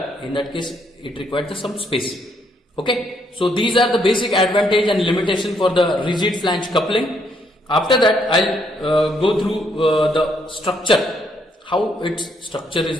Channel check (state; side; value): normal; both; correlation 0.71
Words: In that case, it required some space. Okay, so these are the basic advantage and limitation for the rigid flange coupling. After that, I'll go through the structure, how its structure